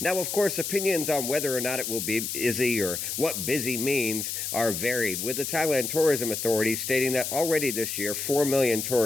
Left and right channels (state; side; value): noise; left; hiss, 4 dB below the sound